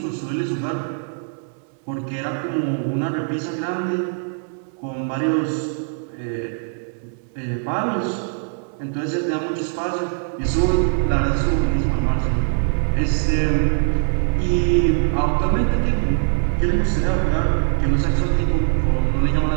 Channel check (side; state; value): left; silent; 62 dB below the other